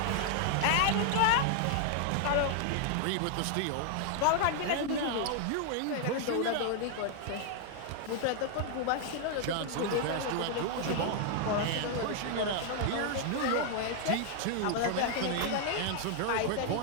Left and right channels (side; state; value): both; different; correlation 0.00